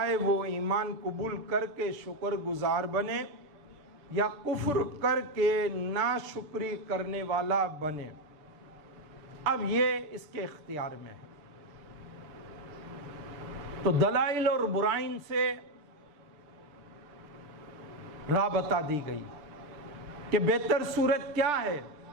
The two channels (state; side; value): late; left; 6.8 ms